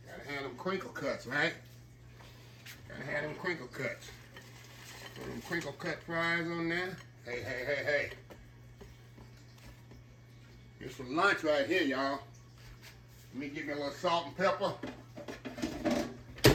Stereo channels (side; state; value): both; identical; correlation 1.00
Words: Gotta have them crinkle cuts, right? Gotta have them crinkle cuts. Put them crinkle cut fries on there. Hey, hey, hey, hey. Here's some lunch right here, y'all. Let me get me a little salt and pepper.